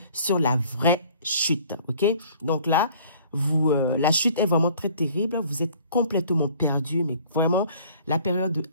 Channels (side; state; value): both; inverted; correlation -0.54